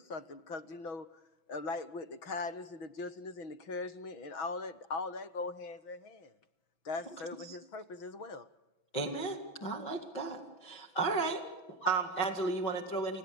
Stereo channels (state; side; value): late; right; 6.1 ms